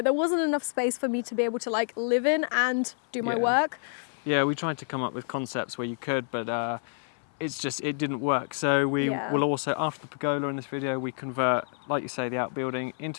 there wasn't enough space for me to be able to like live in and do my work. Yeah, we tried to come up with concepts where you could, but it didn't work. So we will also, after the pergola in this video, we convert, like you say, the outbuilding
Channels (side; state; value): right; silent; 59 dB below the other